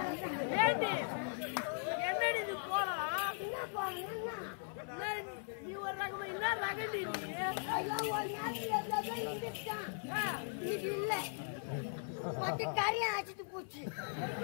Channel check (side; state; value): right; silent; 52 dB below the other